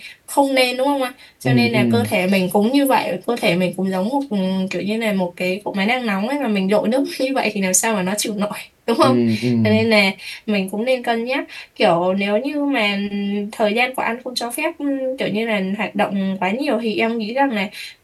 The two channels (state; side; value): identical; both; correlation 1.00